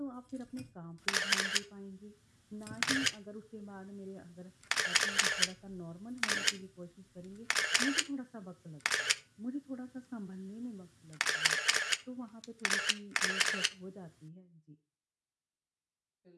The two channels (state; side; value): identical; both; correlation 1.00